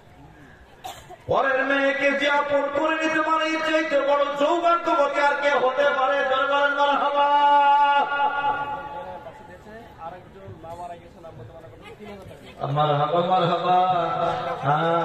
পরের মেয়েকে যে আপন করে নিতে পারে, এর চাইতে বড় সৌভাগ্যবতী আর কে হতে পারে? জনগণ মারহাবা। মারহাবা মারহাবা।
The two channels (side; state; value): both; identical; correlation 1.00